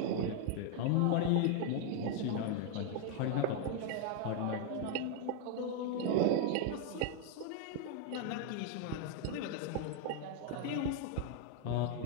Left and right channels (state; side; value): different; both; correlation 0.00